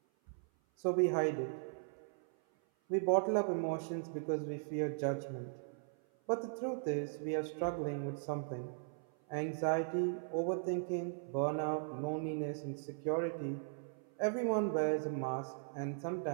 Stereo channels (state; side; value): silent; left; 52 dB below the other